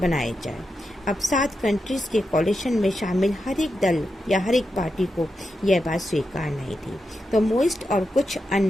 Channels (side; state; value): both; normal; correlation 0.87